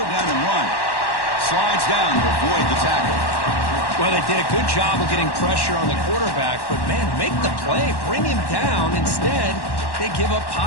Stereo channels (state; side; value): late; right; 1.1 ms